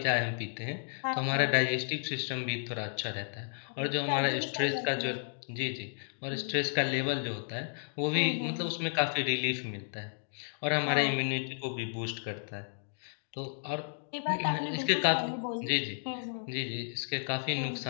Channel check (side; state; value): right; silent; digital silence